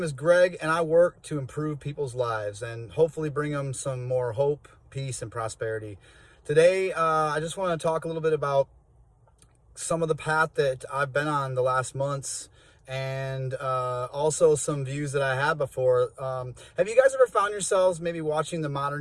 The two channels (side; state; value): both; identical; correlation 1.00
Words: is Greg, and I work to improve people's lives and hopefully bring them some more hope, peace, and prosperity. Today, I just want to talk a little bit about some of the path that I've been on the last months and also some views that I had before. Have you guys ever found yourselves maybe watching the